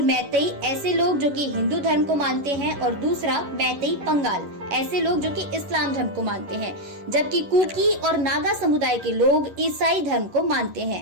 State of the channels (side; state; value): left; late; 11 ms